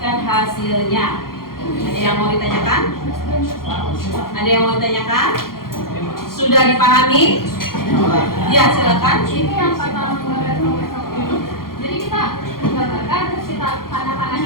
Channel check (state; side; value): late; right; 0.92 ms